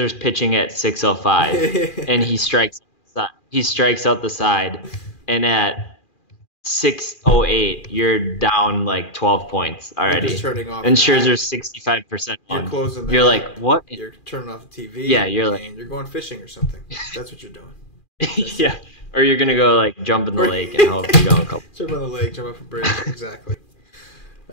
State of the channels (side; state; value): right; late; 2.4 ms